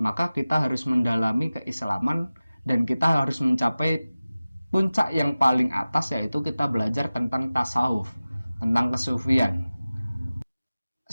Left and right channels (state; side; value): inverted; both; correlation -0.97